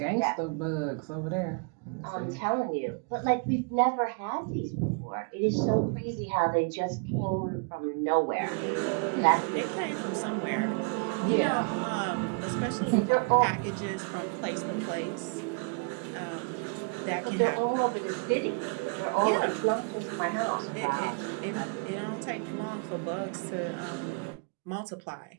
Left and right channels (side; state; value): left; quieter; 36.4 dB